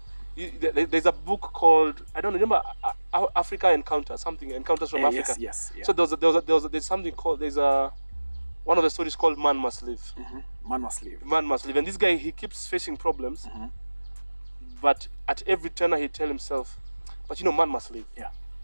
there's a book called, I don't remember, Africa Encounters from Africa. Yes. So there's something called, one of the stories called Man Must Live. Man must live. Man must live. And this guy, he keeps facing problems, but at every turn he tell himself, but you know, man must live. Yeah.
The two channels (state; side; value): inverted; both; correlation -1.00